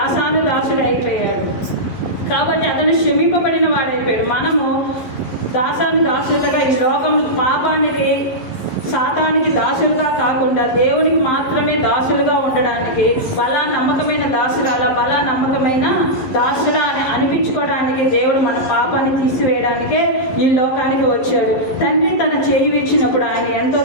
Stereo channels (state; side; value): late; right; 11 ms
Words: అయిపోయాడు. కాబట్టి అతను క్షమింపబడిన వాడైపోయాడు. మనము దాసులుగా ఈ లోకం పాపానికి, సాతానికి దాసులుగా కాకుండా దేవునికి మాత్రమే దాసులుగా ఉండడానికి, బలా నమ్మకమైన దాసుడా అని అనిపించుకోవడానికి దేవుడు మన పాపాన్ని తీసివేయడానికే ఈ లోకానికి వచ్చాడు. తండ్రి తన చేయి ఇచ్చినప్పుడు ఆయన ఎంతో